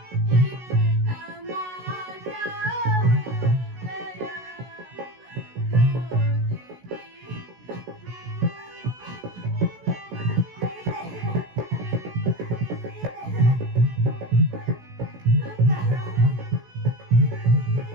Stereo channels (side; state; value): left; late; 16 ms